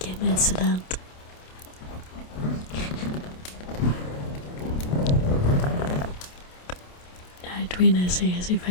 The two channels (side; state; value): right; late; 28 ms